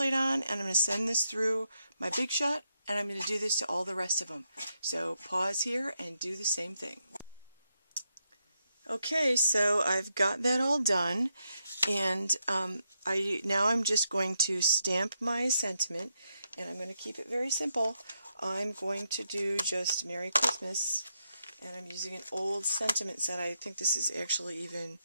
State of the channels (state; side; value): inverted; both; correlation -0.82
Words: on, and I'm going to send this through my Big Shot, and I'm going to do this to all the rest of them. So pause here and do the same thing. Okay, so I've got that all done, and now I'm just going to stamp my sentiment, and I'm going to keep it very simple. I'm going to do just Merry Christmas, and I'm using an old sentiment set. I think this is actually even